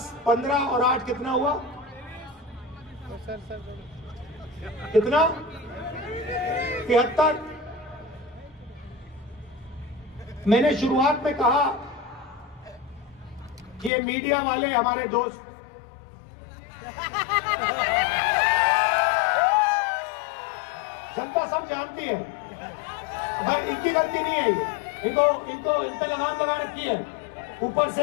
15 और 8 कितना हुआ? कितना? 73। मैंने शुरुआत में कहा कि ये मीडिया वाले हमारे दोस्त, जनता सब जानती है, भाई इनकी गलती नहीं है। ये इनको इन पे लगाम लगा रखी है, ऊपर से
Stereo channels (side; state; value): right; drops out; at 13.9 s